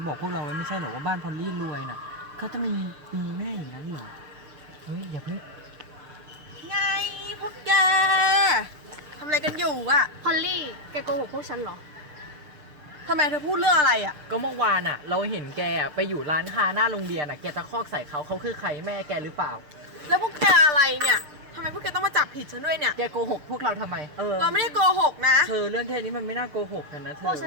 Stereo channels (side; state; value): left; late; 6.7 ms